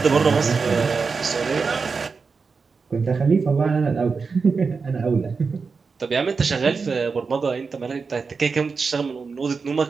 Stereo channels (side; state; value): left; quieter; 4.9 dB